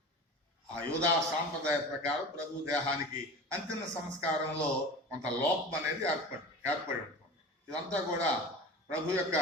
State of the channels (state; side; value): normal; both; correlation 0.34